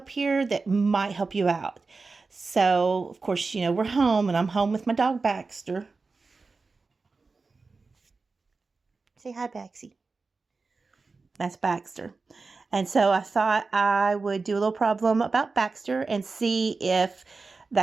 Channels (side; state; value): left; quieter; 4.1 dB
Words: here that might help you out. So, of course, we're home and I'm home with my dog Baxter. Say hi, Baxie. That's Baxter. And so I thought I would do a little problem about Baxter and see if